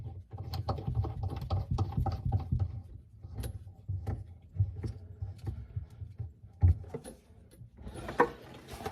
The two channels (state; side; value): identical; both; correlation 1.00